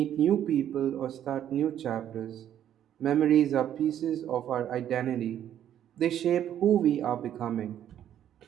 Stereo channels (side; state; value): left; quieter; 10.6 dB